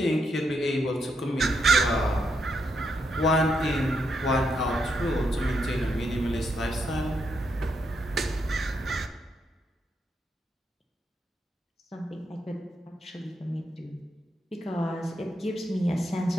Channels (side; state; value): both; normal; correlation 0.80